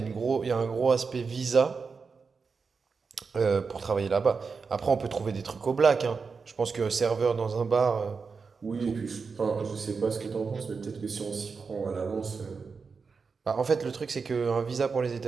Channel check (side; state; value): left; quieter; 5.1 dB